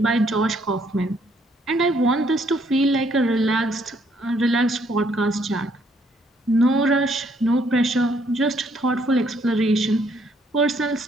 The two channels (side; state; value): both; normal; correlation 0.68